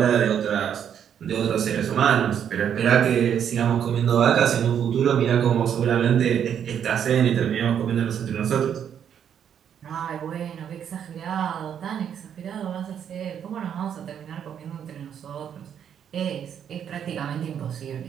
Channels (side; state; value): left; quieter; 8.7 dB